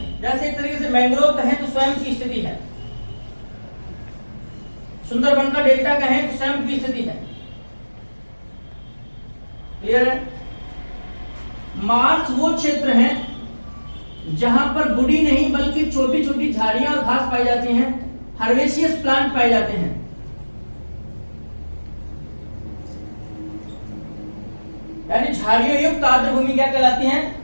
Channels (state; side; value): inverted; both; correlation -1.00